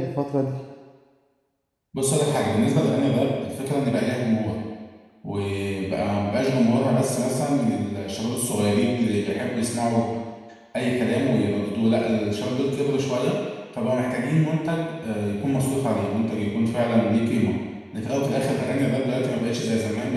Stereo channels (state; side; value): identical; both; correlation 1.00